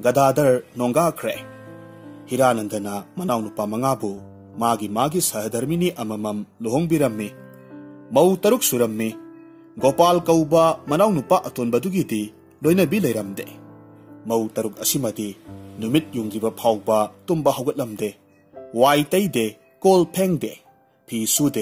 नोंगाख्रे। हिरानंदना मनाउनुपा मंगाबु मागी मागी सहधर्मिनी अममम लुहोंगबिरम्मी। मऊ तरुक सुरम्मी। गोपाल कौबा मनाउनुपा अतोनबदुगिदी लोइनबी लैरमदे। मऊ तरुक असिमदी नुमित युंगिबा फाउबा तुम्बा हौगतलमदे। वाई तैदे कोल फेंगदे फी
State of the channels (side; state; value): both; identical; correlation 1.00